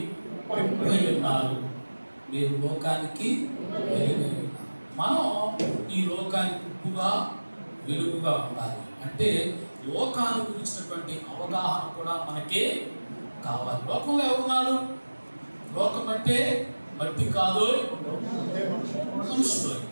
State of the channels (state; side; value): inverted; both; correlation -1.00